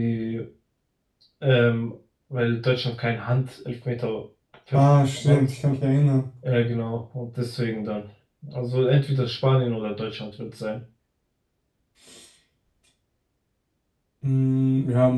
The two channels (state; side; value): identical; both; correlation 1.00